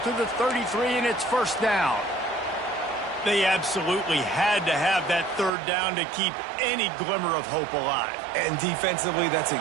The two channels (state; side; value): drops out; left; at 5.5 s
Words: to the 33, and it's first down. They absolutely had to have that third down to keep any glimmer of hope alive. And defensively, that's